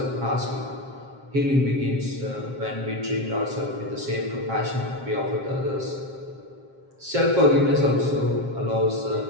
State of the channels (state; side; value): late; left; 7.5 ms